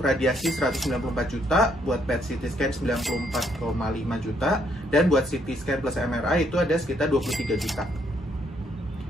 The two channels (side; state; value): both; normal; correlation 0.71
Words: 194 juta, buat PET CT scan 94,5 juta, dan buat CT scan plus MRI itu ada sekitar 23 juta.